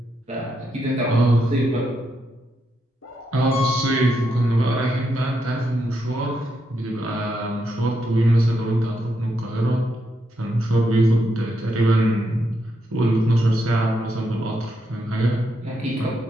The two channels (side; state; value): both; normal; correlation 0.81